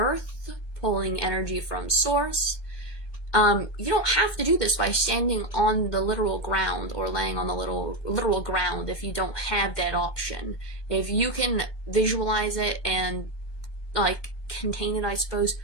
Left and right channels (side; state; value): right; late; 1.2 ms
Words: pulling energy from source, you don't have to do this by standing on the literal ground or laying on the literal ground if you don't have that option. If you can visualize it and like contain it, I suppose,